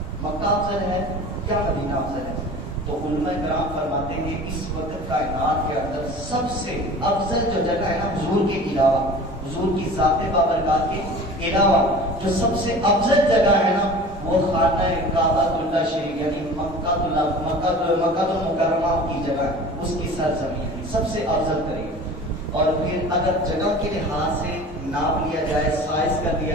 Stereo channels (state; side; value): normal; both; correlation 0.40